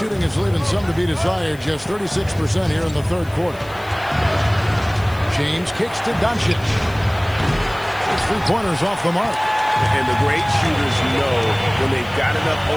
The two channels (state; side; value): noise; left; hiss, 24 dB below the sound